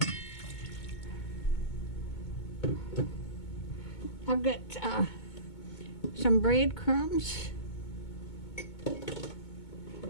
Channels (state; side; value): late; right; 2.2 ms